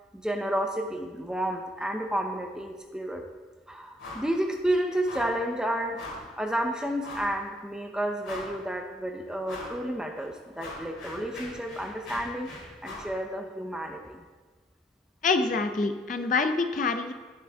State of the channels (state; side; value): normal; both; correlation 0.68